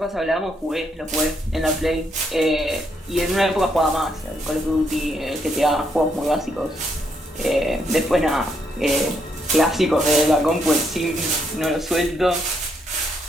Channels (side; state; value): both; normal; correlation 0.76